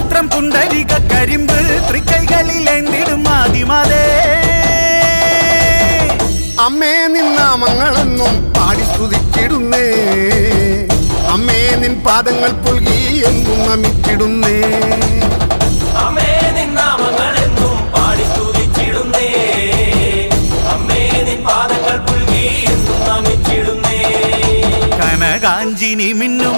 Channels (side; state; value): both; inverted; correlation -1.00